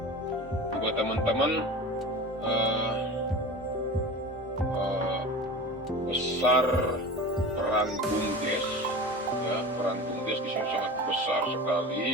Buat teman-teman besar peran BUMDes ya, peran BUMDes di sini sangat besar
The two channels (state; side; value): normal; both; correlation 0.33